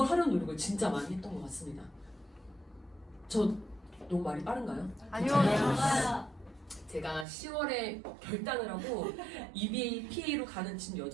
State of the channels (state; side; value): drops out; left; at 7.2 s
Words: 하려는 노력을 진짜 많이 했던 것 같습니다. 저 너무 말이 빠른가요? 아니요. 제가 10월에 결단을 하고 EBAPA로 가는 진